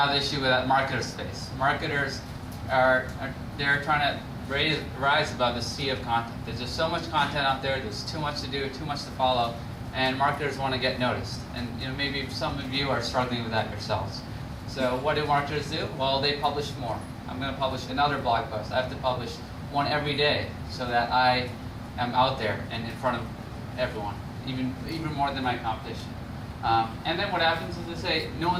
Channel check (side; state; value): both; identical; correlation 1.00